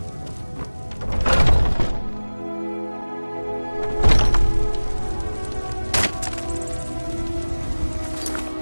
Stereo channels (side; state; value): both; inverted; correlation -1.00